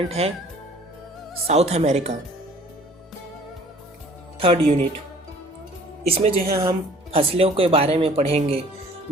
है साउथ अमेरिका। थर्ड यूनिट, इसमें जो है हम फसलों के बारे में पढ़ेंगे,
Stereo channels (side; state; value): both; normal; correlation 0.52